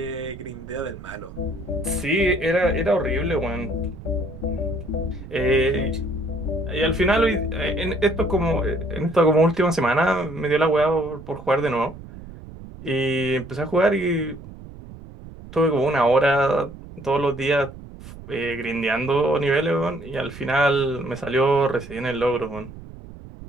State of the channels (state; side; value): noise; right; rumble, 15 dB below the sound